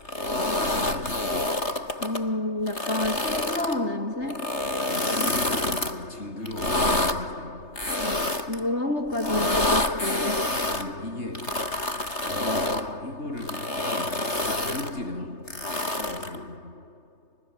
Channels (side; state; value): right; late; 3.3 ms